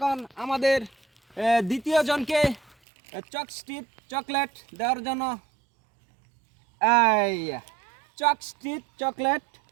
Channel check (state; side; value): drops out; left; at 2.8 s